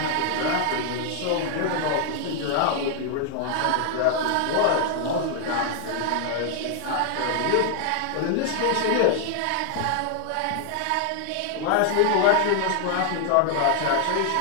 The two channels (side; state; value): both; different; correlation 0.00